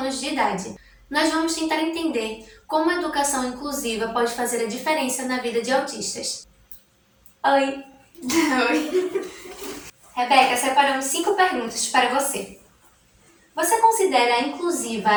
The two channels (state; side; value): identical; both; correlation 1.00